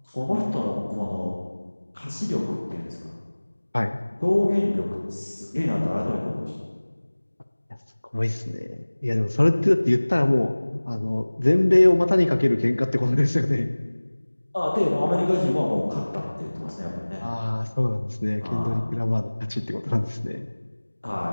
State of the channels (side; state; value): both; inverted; correlation -1.00